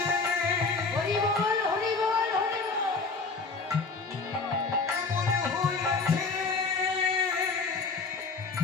হরি বল হরি বল হরি বল। এমন হয়েছে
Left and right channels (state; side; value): quieter; right; 4.3 dB